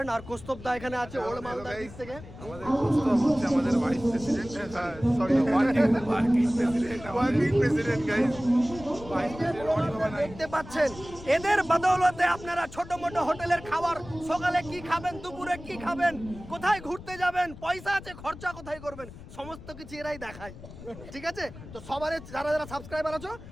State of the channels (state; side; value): noise; left; rumble, 15 dB below the sound